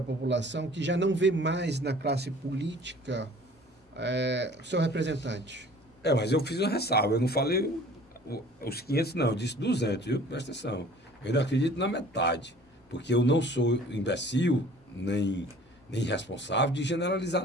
população que já não vê mais na classe política seu representante. Mas eu fiz uma ressalva, eu não falei os 500, não, eu disse 200, viu? Presta atenção. Eu ainda acredito na metade, porque eu não sou imbecil, nem irresponsável de generalizar,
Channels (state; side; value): normal; both; correlation 0.49